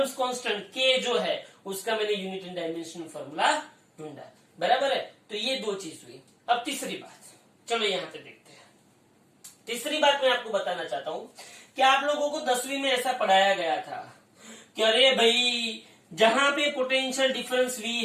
कांस्टेंट के जो है उसका मैंने यूनिट एंड डायमेंशन फॉर्मूला ढूंढा। बराबर है, तो ये दो चीज हुई। अब तीसरी बात, चलो यहां पे देखते हैं। तीसरी बात मैं आपको बताना चाहता हूं कि आप लोगों को 10वीं में ऐसा पढ़ाया गया था कि अरे भाई जहां पे पोटेंशियल डिफरेंस V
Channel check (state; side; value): identical; both; correlation 1.00